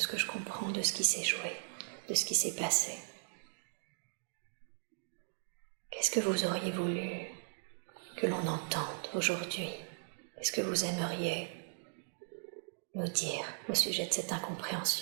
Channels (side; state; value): left; silent; digital silence